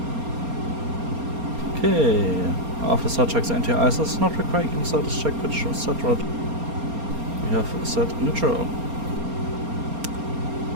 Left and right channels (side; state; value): left; late; 4.3 ms